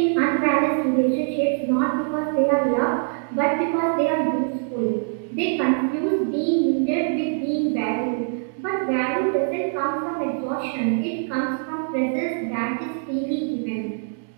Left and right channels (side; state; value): left; silent; digital silence